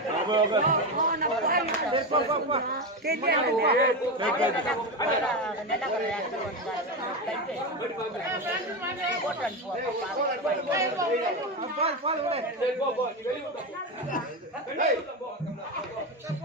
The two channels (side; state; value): both; normal; correlation 0.15